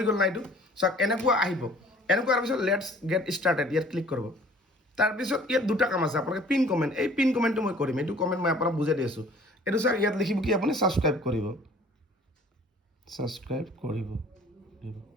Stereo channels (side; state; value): both; normal; correlation 0.52